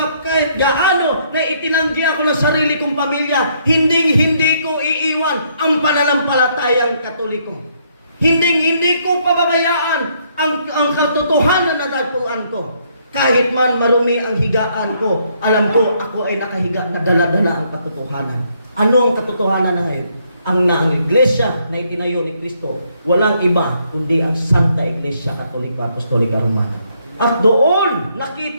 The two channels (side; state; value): both; inverted; correlation -0.70